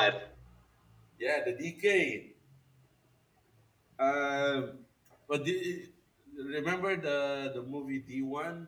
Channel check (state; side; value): identical; both; correlation 1.00